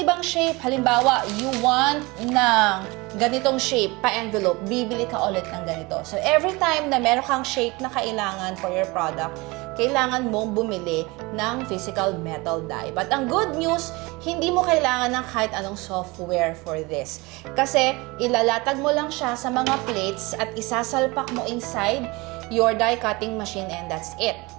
shape, halimbawa, you want ng ganitong shape, pa-envelope, bibili ka ulit ng ganito. So, every time na meron kang shape na kailangan for your product, kailangan mong bumili ng physical metal die. But ang good news, hindi mo kailangan ng kahit anong software for this. Kasi, ilalatag mo lang siya sa mga plates at isasalpak mo inside your die cutting machine and that's it.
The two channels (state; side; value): quieter; left; 24.1 dB